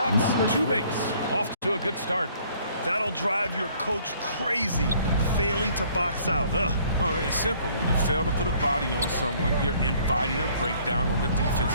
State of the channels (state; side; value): inverted; both; correlation -0.59